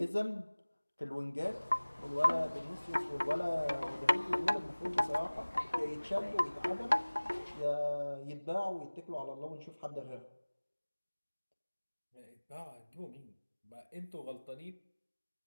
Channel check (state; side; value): inverted; both; correlation -1.00